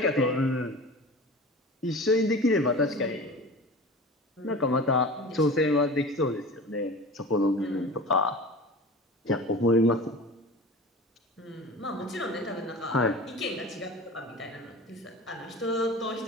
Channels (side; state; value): both; normal; correlation 0.35